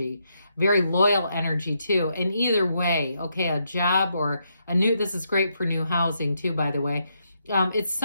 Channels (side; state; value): both; inverted; correlation -0.79